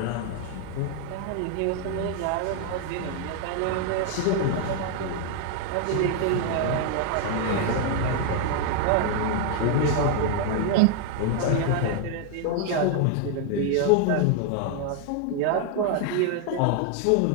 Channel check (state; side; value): different; both; correlation 0.01